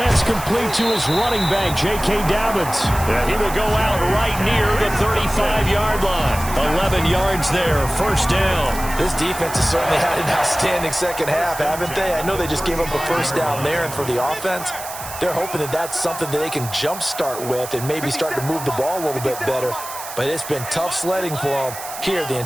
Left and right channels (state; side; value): noise; right; hiss, 11 dB below the sound